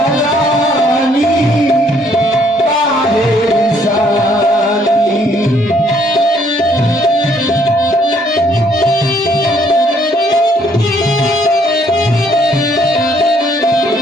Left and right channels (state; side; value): normal; both; correlation 0.66